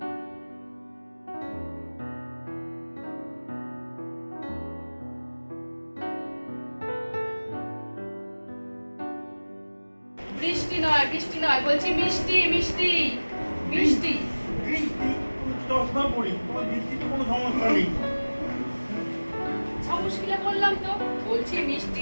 বৃষ্টি নয়, বৃষ্টি নয়, বলছি মিষ্টি, মিষ্টি, মিষ্টি। বৃষ্টি চশমা পড়ি, তোমার বৃষ্টিতে কোনো সমস্যা নেই। মুশকিলে বললাম তো, বলছি মিষ্টি,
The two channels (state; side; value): inverted; both; correlation -1.00